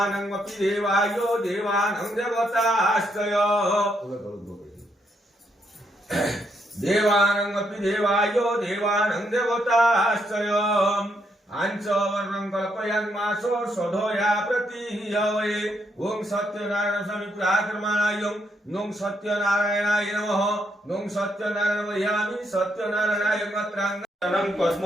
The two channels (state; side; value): normal; both; correlation 0.77